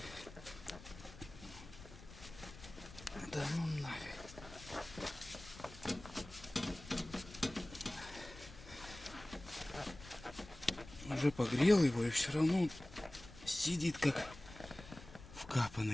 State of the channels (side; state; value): left; noise; rumble, 16 dB below the sound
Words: Да ну нафиг. Уже погрел его и все равно сидит как